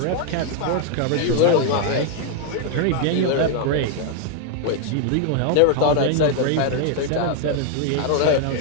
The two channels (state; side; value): different; both; correlation 0.00